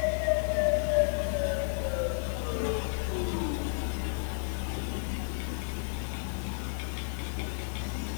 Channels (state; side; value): silent; right; 55 dB below the other